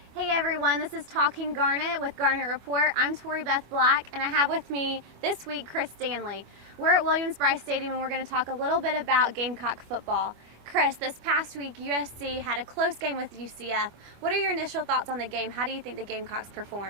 everyone, this is Talking Garnet with Garnet Report. I'm Tori Beth Black, and I have with me this week Chris Stanley. We're at Williams-Brice Stadium, and we're going to talk a little bit about Gamecock football. Chris, this past week USC had a close game with UCF. What are your initial thoughts on the game? How do you think the Gamecocks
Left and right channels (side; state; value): left; late; 25 ms